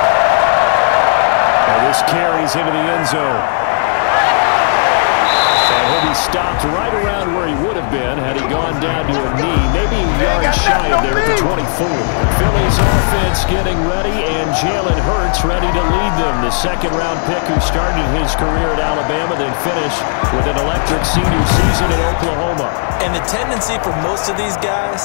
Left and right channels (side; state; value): right; silent; digital silence